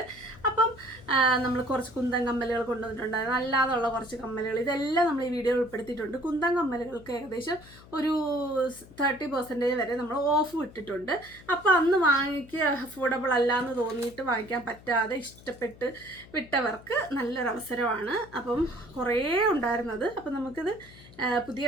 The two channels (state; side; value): noise; left; hum, 21 dB below the sound